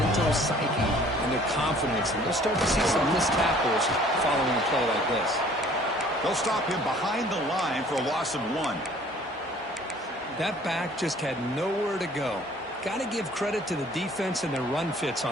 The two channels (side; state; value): both; normal; correlation 0.54